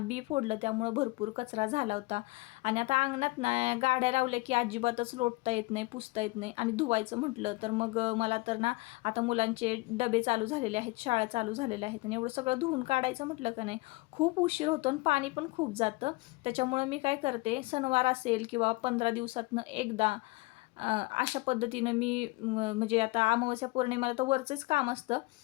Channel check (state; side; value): quieter; right; 23.5 dB